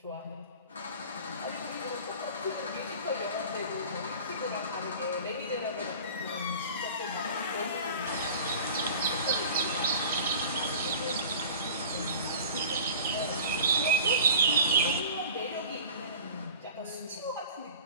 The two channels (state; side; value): inverted; both; correlation -0.41